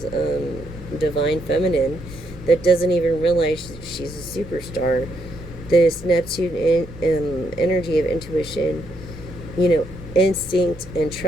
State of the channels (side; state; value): right; noise; rumble, 19 dB below the sound